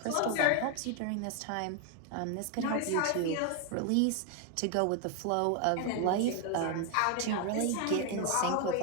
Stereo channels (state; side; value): different; both; correlation 0.01